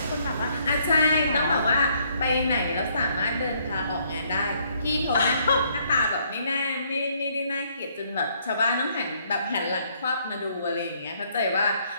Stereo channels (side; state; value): both; inverted; correlation -0.68